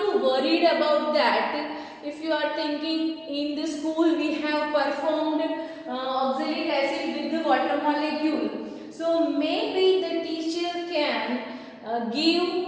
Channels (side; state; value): both; identical; correlation 1.00